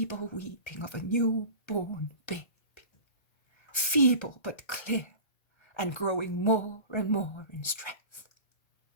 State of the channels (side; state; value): right; late; 1.3 ms